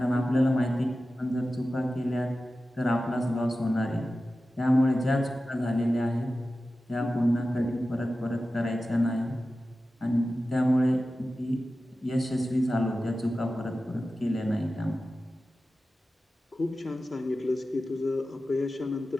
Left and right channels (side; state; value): both; normal; correlation 0.94